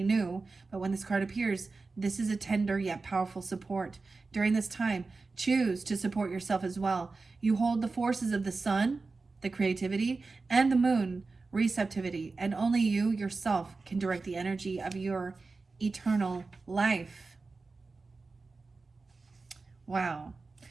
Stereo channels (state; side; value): quieter; left; 3.9 dB